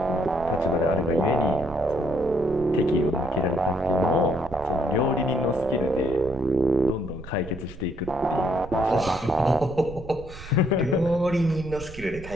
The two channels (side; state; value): right; noise; rumble, 15 dB below the sound